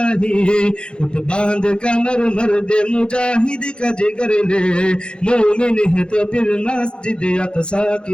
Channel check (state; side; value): late; right; 0.053 ms